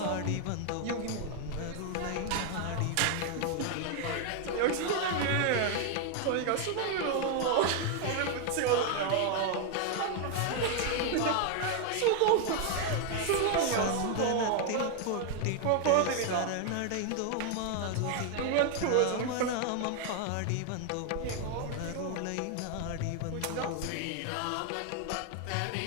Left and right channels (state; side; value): different; both; correlation 0.00